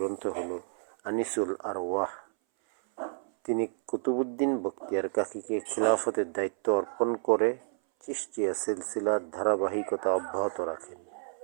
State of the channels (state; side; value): silent; left; 58 dB below the other